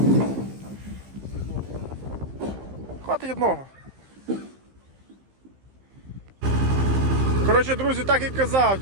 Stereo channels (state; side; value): late; left; 15 ms